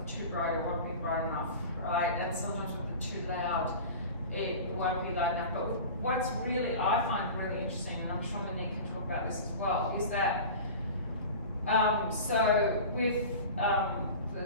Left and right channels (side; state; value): both; inverted; correlation -0.34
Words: too bright, it won't be bright enough, right? And sometimes with the too loud, it won't be loud enough. But what's really, I find really interesting, and I'm sure Monique can talk about this as well, is that, so with,